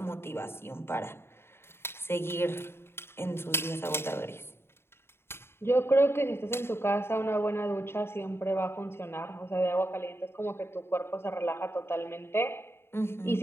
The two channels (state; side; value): late; right; 0.12 ms